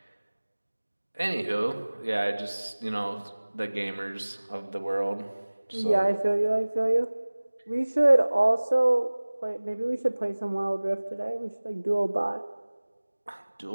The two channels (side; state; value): both; inverted; correlation -1.00